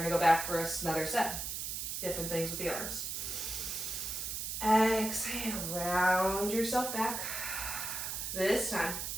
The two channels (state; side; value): noise; right; hiss, 4 dB below the sound